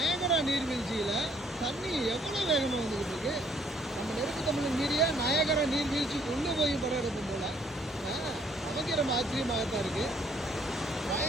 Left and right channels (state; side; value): normal; both; correlation 0.65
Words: நீர்வீழ்ச்சியில் தண்ணி எவ்வளோ வேகமாக வந்துக்கிட்டு இருக்கு. நம்ம நெருப்பு தமிழன் மீறிய நயகரா நீர்வீழ்ச்சி கொண்டு போய் படம் எடுக்கும் போல நமக்கு ரொம்ப ஆச்சரியமாகத்தான் இருக்கு.